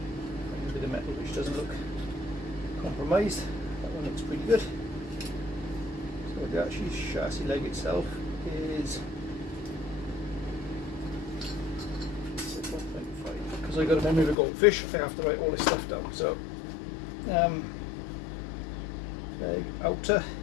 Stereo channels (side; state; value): right; drops out; at 14.4 s